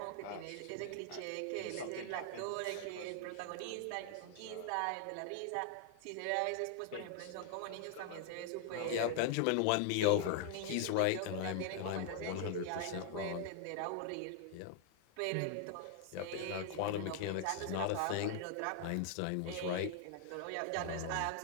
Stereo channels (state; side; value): different; both; correlation 0.00